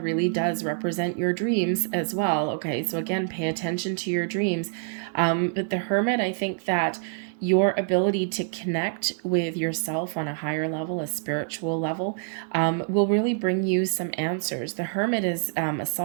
really does represent your dreams as well, okay? So again, pay attention to your dreams. But the Hermit, I think that your ability to connect with yourself on a higher level, a spiritual level, will really bring you some answers. The Hermit is a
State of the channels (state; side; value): silent; left; 59 dB below the other